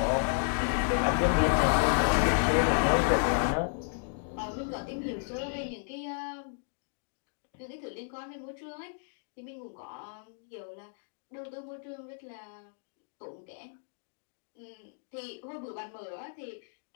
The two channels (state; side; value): silent; right; digital silence